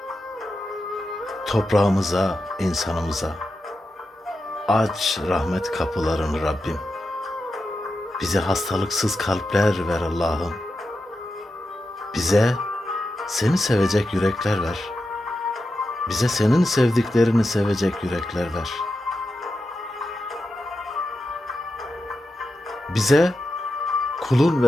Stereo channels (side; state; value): both; normal; correlation 0.89